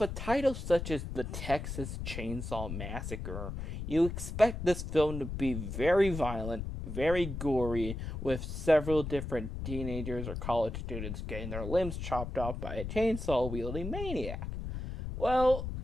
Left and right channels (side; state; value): left; noise; rumble, 6 dB below the sound